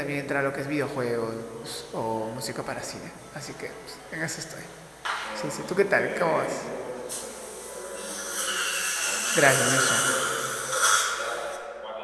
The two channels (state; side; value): identical; both; correlation 1.00